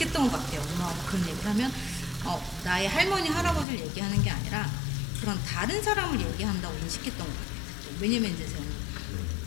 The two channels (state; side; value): drops out; right; at 3.7 s